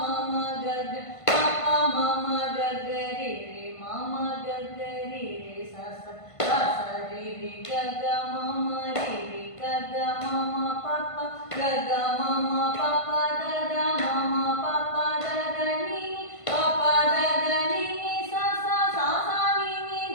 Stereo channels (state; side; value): late; right; 1.5 ms